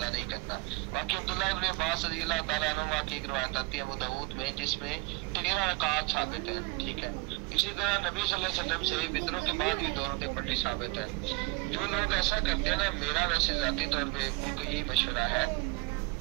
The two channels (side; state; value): left; quieter; 26.6 dB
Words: نہیں کرنا۔ باقی عبداللہ ابن عباس رضی اللہ تعالیٰ عنہ کی ایک روایت آتی ہے ابو داؤد میں جس میں 13 رکعات ثابت ہیں، ٹھیک ہے۔ اسی طرح نبی صلی اللہ علیہ وسلم سے وطروں کے بعد بھی 2 رکعتیں پڑھنی ثابت ہے۔ جو لوگ ایسا کرتے ہیں نا، میرا ویسے ذاتی طور پہ ان کو یہی مشورہ ہے